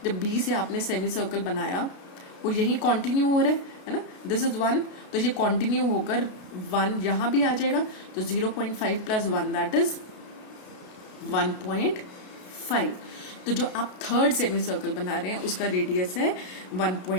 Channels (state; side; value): late; right; 33 ms